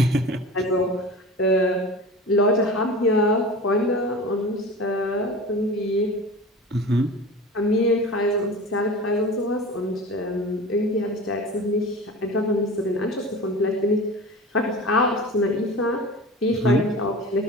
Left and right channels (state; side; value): normal; both; correlation 0.35